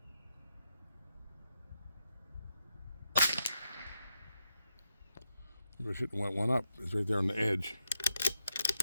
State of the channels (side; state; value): both; inverted; correlation -0.84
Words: I shouldn't went 1 up. It's right there on the edge.